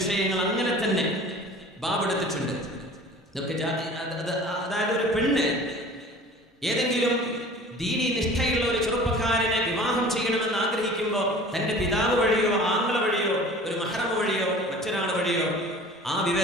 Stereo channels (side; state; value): both; normal; correlation 0.44